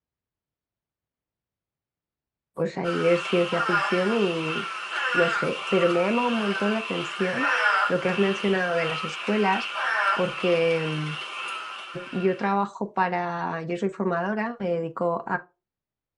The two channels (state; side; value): identical; both; correlation 1.00